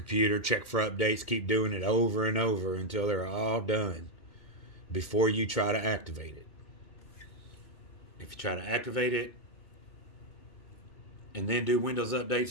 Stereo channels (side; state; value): right; late; 2.2 ms